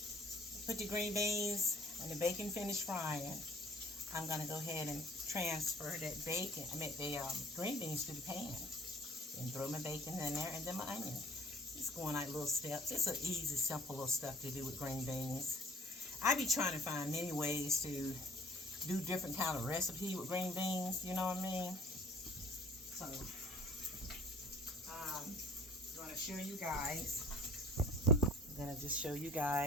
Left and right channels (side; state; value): both; normal; correlation 0.51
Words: put the green beans, when the bacon finished frying, I'm going to go ahead and transfer that bacon, the green beans to the pan. And throw my bacon in there and then my onion. Just going like little steps. It's an easy, simple little stuff to do with green beans. I be trying to find many ways to do different kind of recipe with green beans, you know what I mean? So, I'm going to show you guys. I'm going to just show you